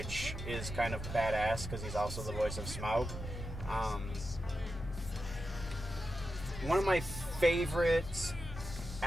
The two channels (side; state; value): both; normal; correlation 0.89